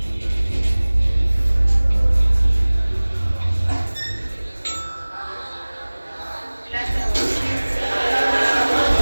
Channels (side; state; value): both; inverted; correlation -1.00